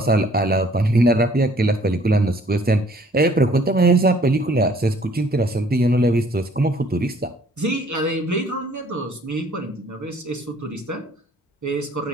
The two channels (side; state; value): both; normal; correlation 0.59